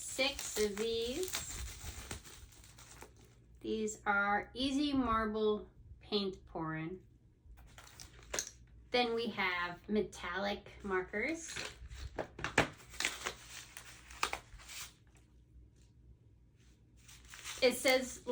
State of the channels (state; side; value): identical; both; correlation 1.00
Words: of these. These are easy marble paint pouring. Then we have metallic markers. It says